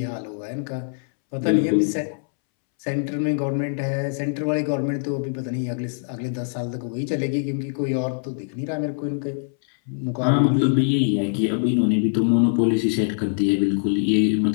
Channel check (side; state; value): right; silent; 63 dB below the other